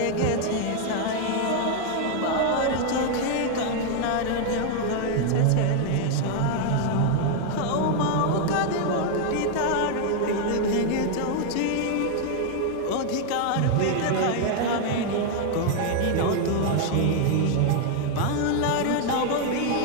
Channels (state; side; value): different; both; correlation 0.00